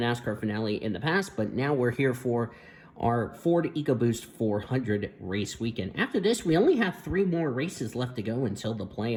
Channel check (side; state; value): both; identical; correlation 1.00